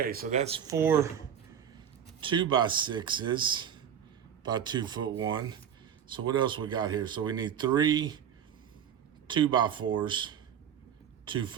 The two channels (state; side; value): quieter; left; 8.7 dB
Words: so that's 4 2x6s by 2-foot 1. So what else we got here? So we need 3 2x4s,